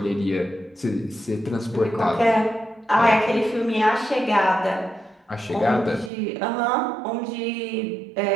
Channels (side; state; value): left; drops out; at 6.1 s